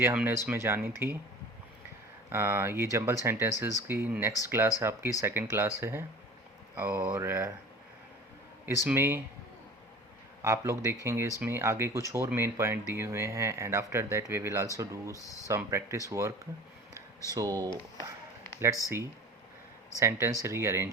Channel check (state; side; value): normal; both; correlation 0.41